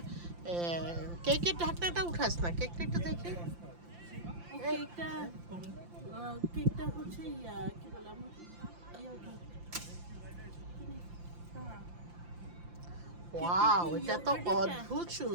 কেকের ঢাকনাটা উঠাস না, কেকটা একটু দেখি। কেকটা হচ্ছে কি বললাম ওয়াও, এটা তো অদ্ভুত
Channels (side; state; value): left; late; 5.8 ms